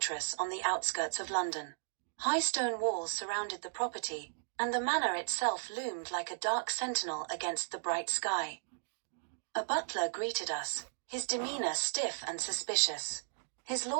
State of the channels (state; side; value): silent; left; digital silence